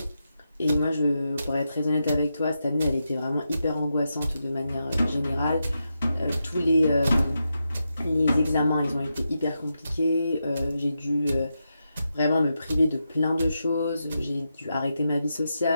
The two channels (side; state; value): both; inverted; correlation -0.87